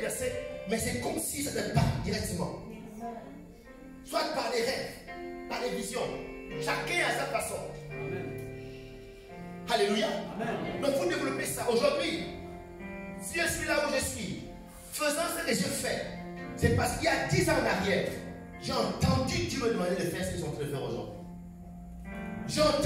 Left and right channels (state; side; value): identical; both; correlation 1.00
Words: verset, mais c'est comme si ça te parle directement. Soit par les rêves, par les visions. Chacun à sa façon. Alléluia. Donc il faut développer ça. Aujourd'hui, si je suis là où je suis, faisant ce que je fais, c'est parce qu'il y a 10 ans en arrière, j'ai entendu Dieu me demander de faire ce qu'ils sont en train de faire aujourd'hui. J'ai